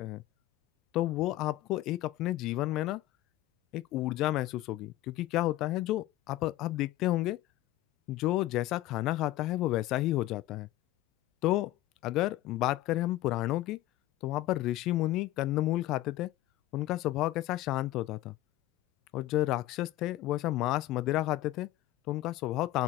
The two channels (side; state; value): right; quieter; 15.8 dB